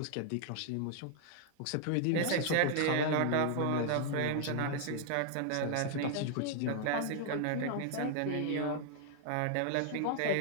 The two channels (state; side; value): different; both; correlation 0.00